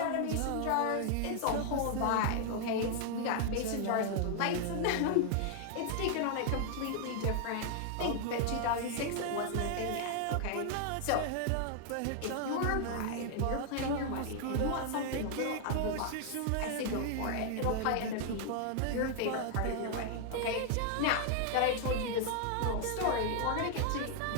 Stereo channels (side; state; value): both; different; correlation 0.00